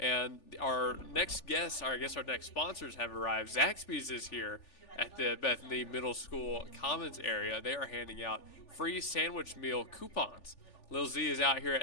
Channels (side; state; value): right; late; 3.4 ms